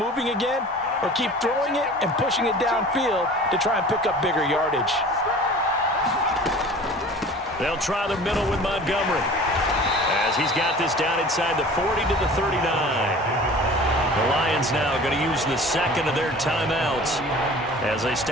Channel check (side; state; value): both; normal; correlation 0.43